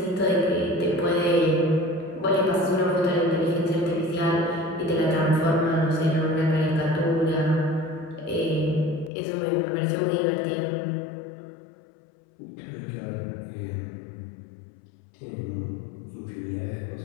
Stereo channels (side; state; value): right; drops out; at 9.1 s